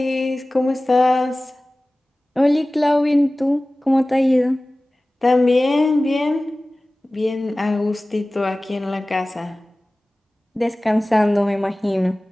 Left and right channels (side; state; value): both; normal; correlation 0.98